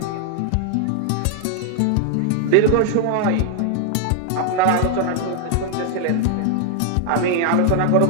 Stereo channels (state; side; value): different; both; correlation 0.00